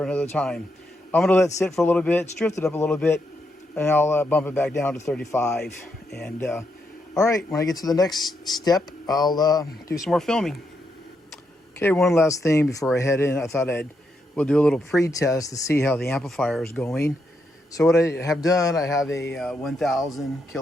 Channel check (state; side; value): normal; both; correlation 0.81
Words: another time. I'm going to let it sit for a little bit. It's drifted up a little bit, and I'll bump it back down to 35. And all right, when I get to the next step, I'll do some more filming. Okay, one last thing before I head in. I thought we'll do a little pre-test to see how the amplifier is going. So what I have done, I have a 1000